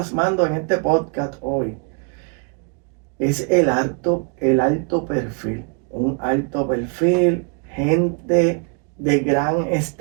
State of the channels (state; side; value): quieter; left; 38.7 dB